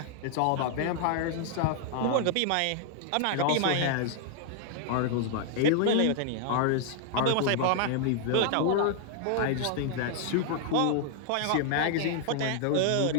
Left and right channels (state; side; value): different; both; correlation 0.00